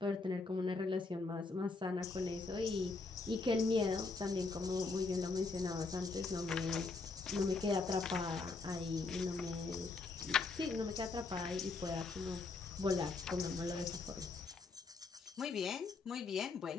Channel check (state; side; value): quieter; right; 3.9 dB